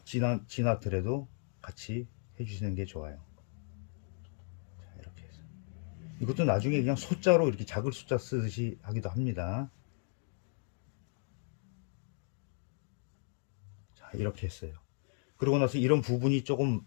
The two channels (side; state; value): right; silent; 54 dB below the other